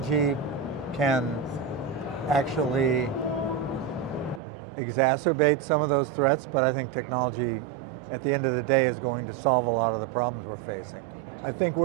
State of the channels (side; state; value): left; drops out; at 4.4 s